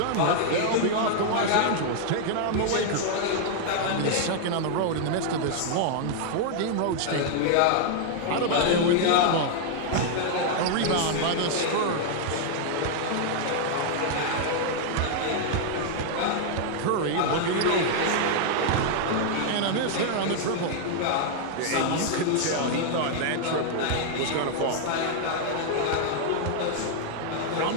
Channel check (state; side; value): different; both; correlation -0.01